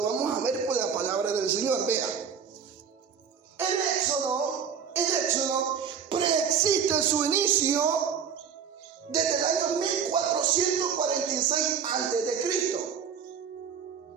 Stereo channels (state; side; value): quieter; left; 7.1 dB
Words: vamos a ver por la palabra del Señor. Vean, el Éxodo preexiste su inicio desde el año 1446 a.C.